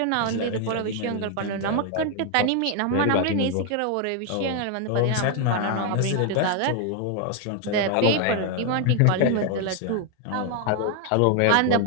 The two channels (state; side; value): different; both; correlation 0.00